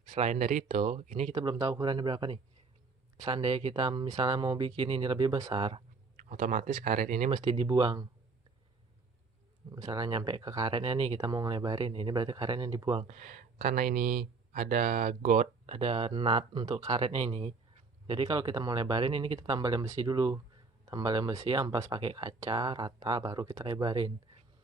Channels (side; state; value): left; quieter; 4.2 dB